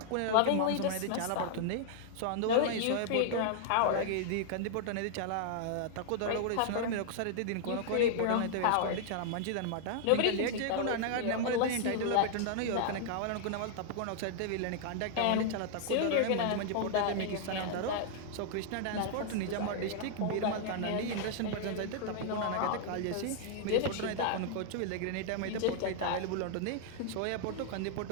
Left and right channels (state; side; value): different; both; correlation -0.01